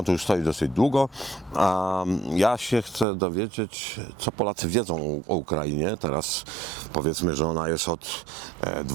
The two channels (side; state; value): left; drops out; at 3.1 s